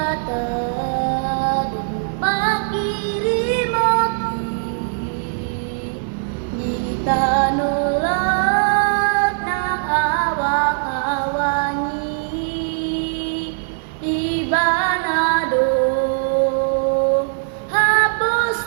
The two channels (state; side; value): silent; left; digital silence